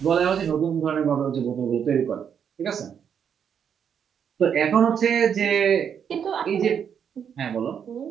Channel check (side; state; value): left; quieter; 7.9 dB